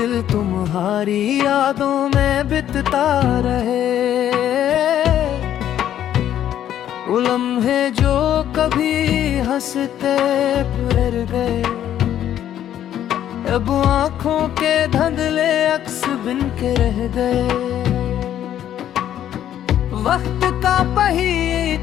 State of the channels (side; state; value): right; quieter; 11.0 dB